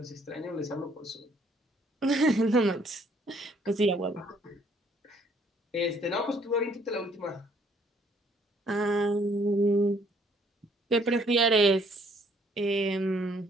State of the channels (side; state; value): both; normal; correlation 0.64